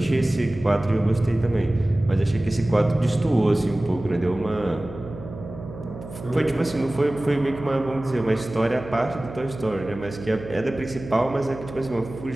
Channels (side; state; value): right; noise; hum, 13 dB below the sound